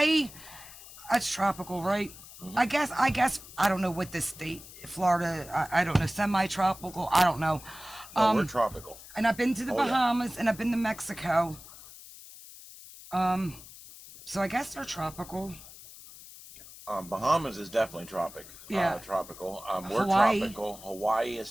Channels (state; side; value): noise; left; hiss, 17 dB below the sound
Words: That's tropical, right? Mm-hmm. I guess I don't know what this state, Florida, I don't know, semi-tropical, I don't know. We're tropical. And I've been to the Bahamas and I've been to Mexico. So I guess they're tropical. Bahamas is definitely tropical. We're Hawaii. tropical. Hawaii is